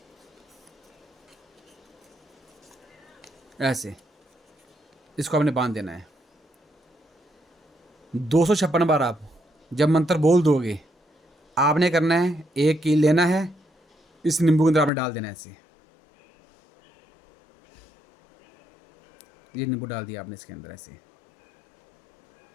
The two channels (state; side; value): drops out; right; at 14.9 s